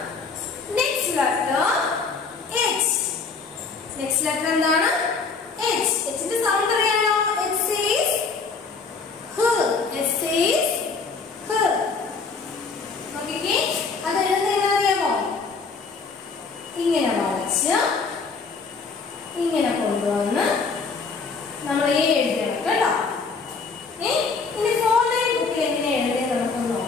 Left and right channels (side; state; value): right; quieter; 4.7 dB